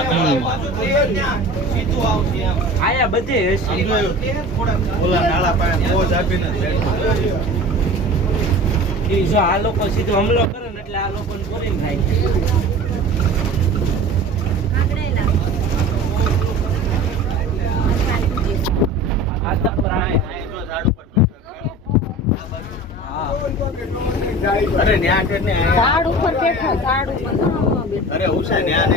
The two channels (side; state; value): both; normal; correlation 0.39